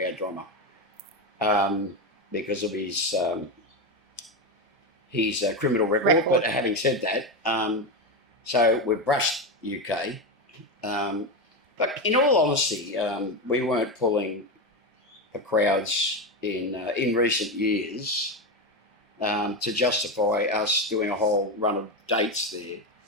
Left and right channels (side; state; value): both; normal; correlation 0.14